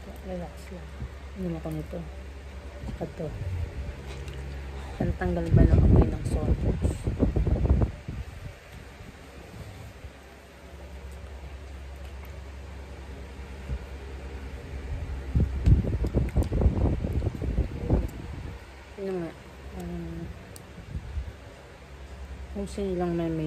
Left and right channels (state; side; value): identical; both; correlation 1.00